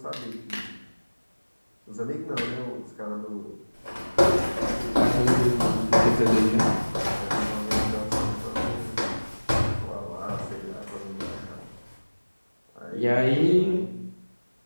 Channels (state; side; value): inverted; both; correlation -1.00